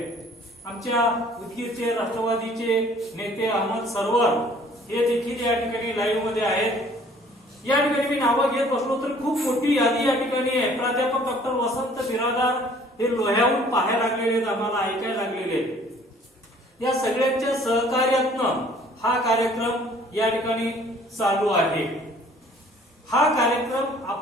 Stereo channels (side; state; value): both; normal; correlation 0.55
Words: आमच्या उदगीरचे राष्ट्रवादीचे नेते अहमद सरवर हे देखील या ठिकाणी लाईव्ह मध्ये आहेत. या ठिकाणी मी नावं घेत बसलो तर खूप मोठी यादी या ठिकाणी आहे. प्राध्यापक डॉक्टर वसंत बिरादार हे लोह्याहून पाहायला लागलेले आहेत, आम्हाला ऐकायला लागलेले आहेत. या सगळ्यांच्या सहकार्यातनं हा कार्यक्रम या ठिकाणी चालू आहे. हा कार्यक्रम